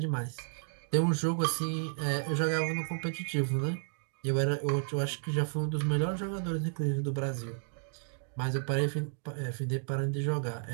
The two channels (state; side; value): silent; left; 56 dB below the other